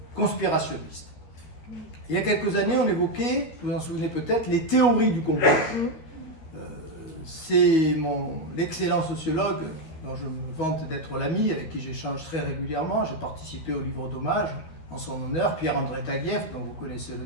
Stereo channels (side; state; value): right; late; 12 ms